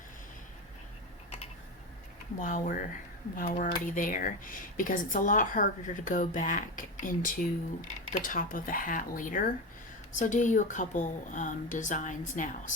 while we're already there, because it's a lot harder to go back into the top of the hat later. So do you a couple designs now,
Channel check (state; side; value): normal; both; correlation 0.20